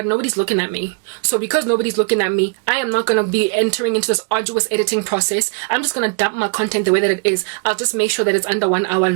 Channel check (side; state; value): left; quieter; 35.8 dB